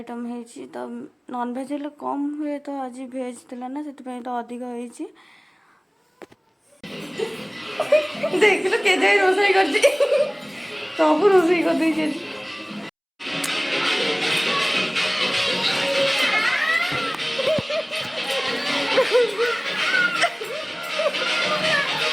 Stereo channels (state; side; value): identical; both; correlation 1.00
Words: होती। तो नॉन भेज हेल्ले कम हुए तो आज भेज थिला ना से तो अधिक होती। देख लो के जाए रोसई कर सब रोसई कर दे